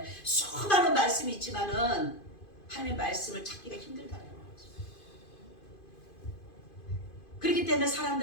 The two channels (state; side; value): late; right; 2.5 ms